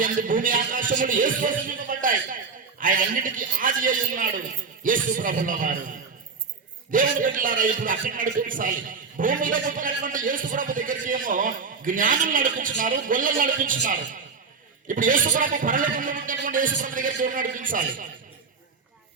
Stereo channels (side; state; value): left; quieter; 5.0 dB